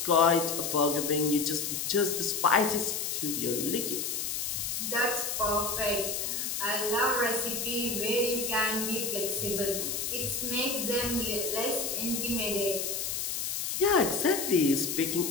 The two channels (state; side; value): noise; left; hiss, 2 dB below the sound